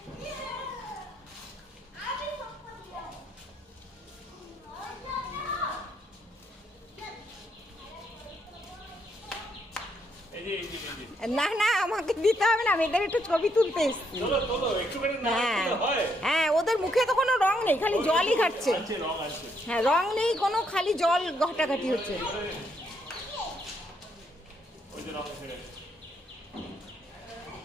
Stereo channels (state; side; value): normal; both; correlation 0.74